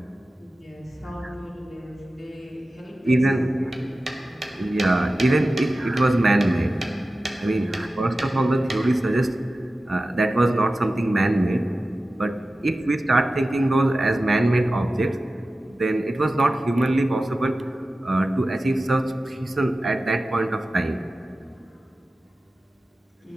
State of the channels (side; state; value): both; normal; correlation 0.95